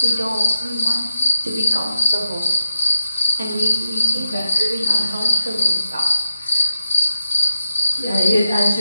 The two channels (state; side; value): inverted; both; correlation -0.86